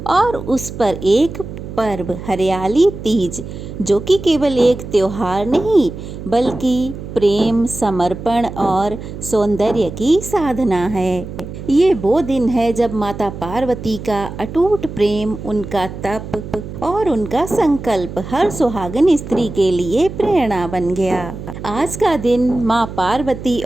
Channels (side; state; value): right; noise; hum, 10 dB below the sound